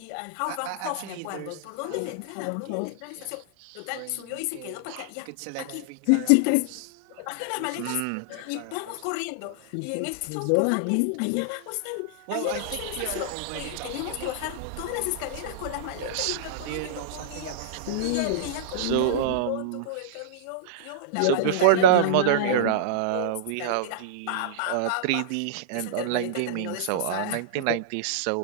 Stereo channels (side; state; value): both; different; correlation -0.02